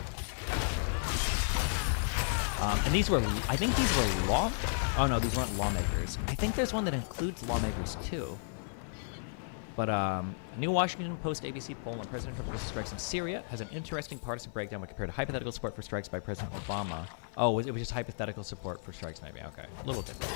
And these were, I think these were oh no, these weren't lawmakers. I think there's one that includes lawmakers too. But New Washington Post ABC poll on President Trump's strikes in Syria has an interesting partisan breakdown when compared to hypothetical support for strikes by President Obama. Oh, it was just hypothetical support for strikes, maybe. Okay, a little different.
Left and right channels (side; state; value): right; silent; 55 dB below the other